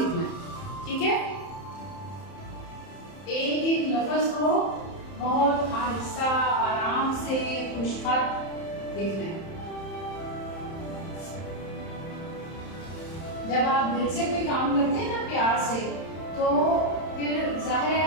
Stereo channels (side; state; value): right; late; 31 ms